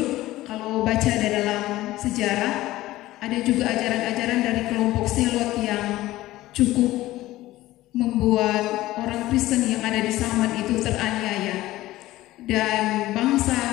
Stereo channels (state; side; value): quieter; right; 16.6 dB